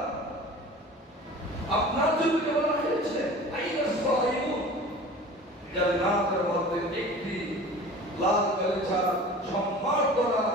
আপনার জন্য বলা হয়েছে আইনাস সাইমুন, জান্নাতের মধ্যে একটি লাল গালিচা সম্মান করা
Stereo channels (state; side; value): normal; both; correlation 0.40